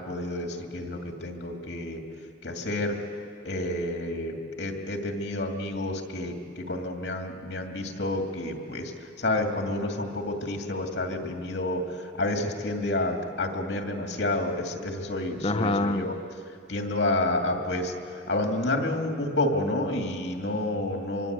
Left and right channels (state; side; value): normal; both; correlation 0.13